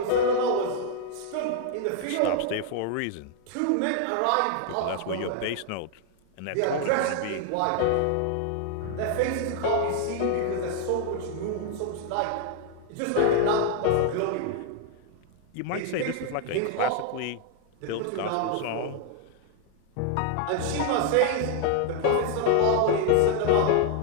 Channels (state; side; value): different; both; correlation 0.00